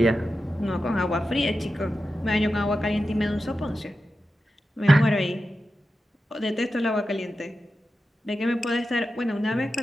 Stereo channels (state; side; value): normal; both; correlation 0.91